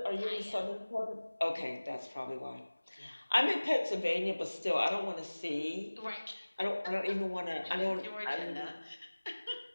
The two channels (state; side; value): inverted; both; correlation -1.00